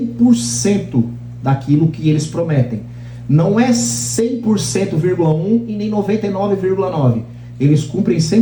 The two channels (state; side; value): identical; both; correlation 1.00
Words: daquilo que eles prometem. Não é 100,1% e nem 99,9%. Eles cumprem